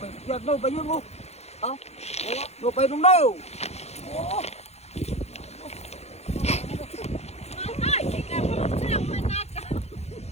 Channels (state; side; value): late; right; 0.31 ms